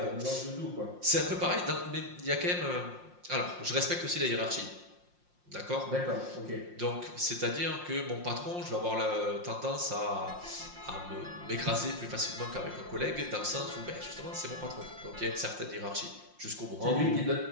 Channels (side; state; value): left; late; 5.6 ms